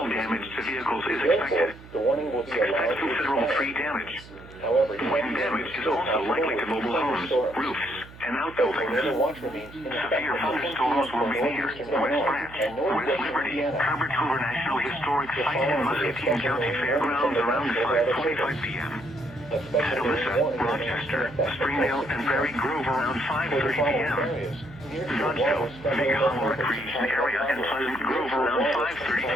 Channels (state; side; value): noise; right; hum, 19 dB below the sound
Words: damage to vehicles is expected. Expect considerable tree damage. Wind damage is also likely to mobile homes, roofs, and outbuildings. Severe thunderstorms will be near West Branch, West Liberty, Cover National Historic Site, and Muscatine County Fairgrounds around 5:45 p.m. Atalissa, Rochester, Springdale, and Prairie Grove around 5:30 p.m. Nutsville, Big Hollow Recreation Area, and Pleasant Grove around